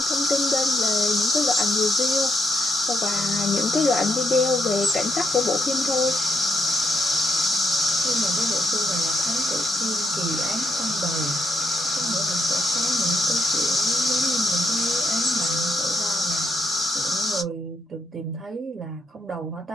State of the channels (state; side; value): normal; both; correlation 0.79